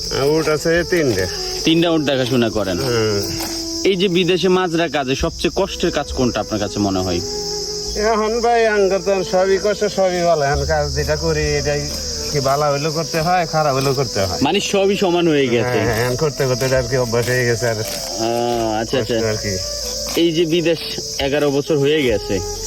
উঠ আছে 3টা। 3টা উঠ দেখাশোনা করেন। হুম। এই যে বিদেশে মাজরা কাজে সবচেয়ে কষ্টের কাজ কোনটা আপনার কাছে মনে হয়? এখন ভাই আঙ্গর তো সবই কষ্ট, সবই ভালো। এখন কাজ যেটা করি এটাই কি ভালো হইলেও করতে হয়, খারাপ হইলেও করতে হয়। মানে সবই সমান হয়ে গেছে। হ্যাঁ, এখন করতে করতে আর কি অভ্যাস হয়ে গেছে। আর আচ্ছা আচ্ছা। আর কি এই যে বিদেশ 11 বছর হয়ে গেছে,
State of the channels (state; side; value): identical; both; correlation 1.00